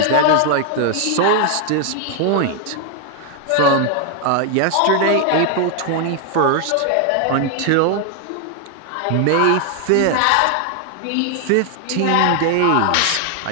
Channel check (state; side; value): different; both; correlation 0.00